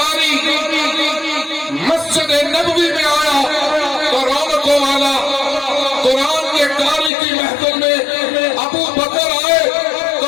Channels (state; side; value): drops out; right; at 7.1 s